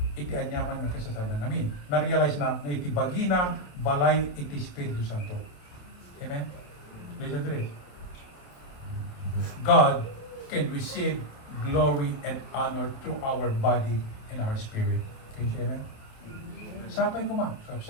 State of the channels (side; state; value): right; late; 28 ms